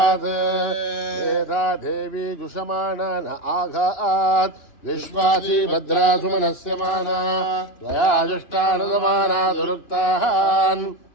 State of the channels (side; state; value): right; late; 2.6 ms